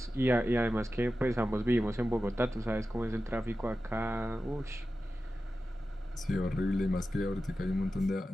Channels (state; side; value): normal; both; correlation 0.93